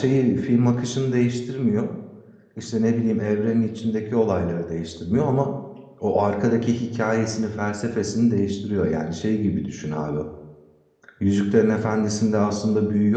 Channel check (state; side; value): identical; both; correlation 1.00